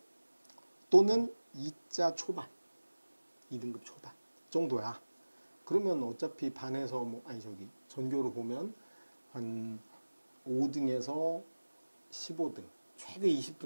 또는 2자 초반, 2등급 초반 정도야. 그러면 어차피 반에서 전교로 보면 한 5등에서 15등, 최대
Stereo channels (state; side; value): inverted; both; correlation -1.00